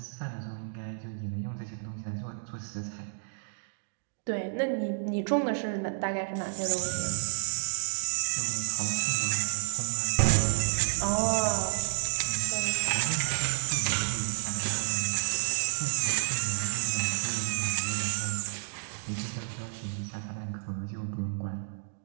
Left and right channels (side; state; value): left; silent; digital silence